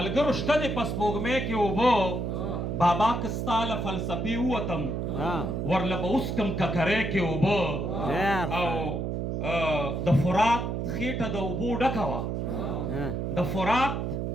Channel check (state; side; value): noise; right; hum, 2 dB below the sound